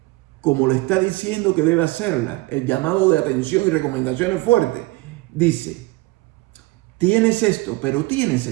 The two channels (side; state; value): left; quieter; 21.6 dB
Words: como le está diciendo que debe hacerla, el llamado de atención y recomendaciones fuertes, dice, tienes esto, pero tienes